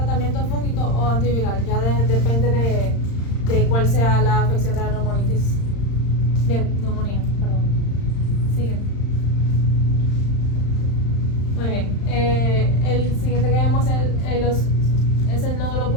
fúngico o antiviral, ya depende de cuál sea la afección de la neumonía. Siguiente. Muy bien. El siguiente que vemos es los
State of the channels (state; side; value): late; right; 35 ms